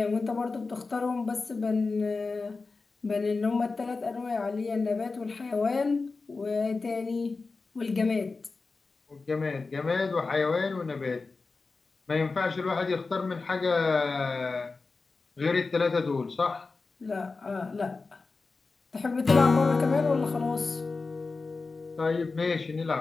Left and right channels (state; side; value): quieter; right; 4.0 dB